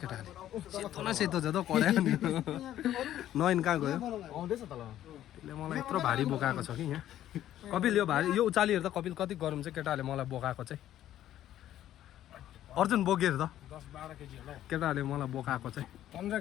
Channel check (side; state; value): right; quieter; 12.3 dB